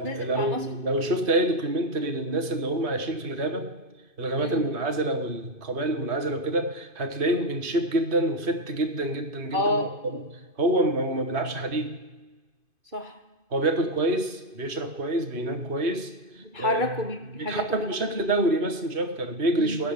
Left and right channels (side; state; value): left; late; 2.5 ms